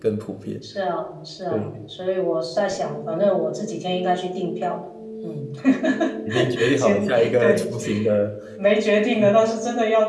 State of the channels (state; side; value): identical; both; correlation 1.00